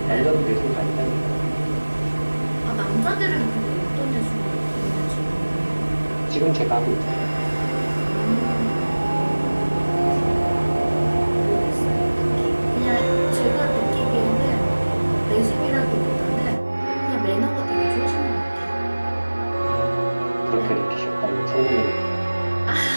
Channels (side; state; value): both; inverted; correlation -1.00